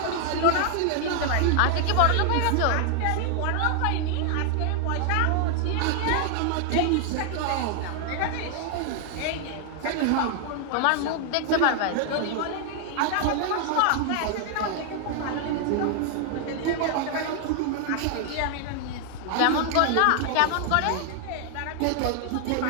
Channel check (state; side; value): different; both; correlation 0.00